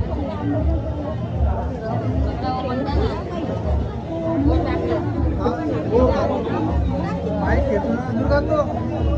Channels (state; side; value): identical; both; correlation 1.00